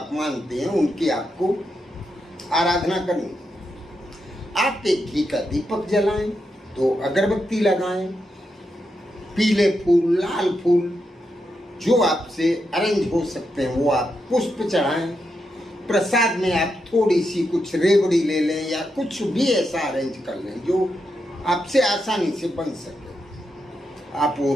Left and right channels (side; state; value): both; normal; correlation 0.84